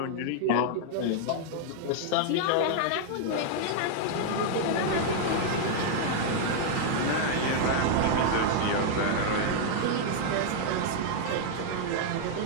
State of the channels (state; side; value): different; both; correlation -0.01